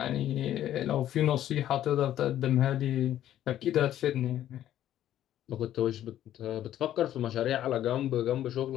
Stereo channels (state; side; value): quieter; right; 12.0 dB